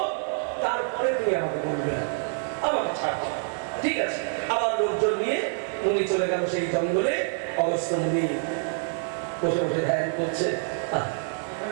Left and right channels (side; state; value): left; silent; 55 dB below the other